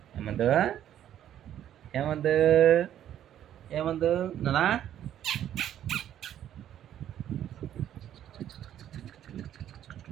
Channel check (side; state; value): left; quieter; 11.0 dB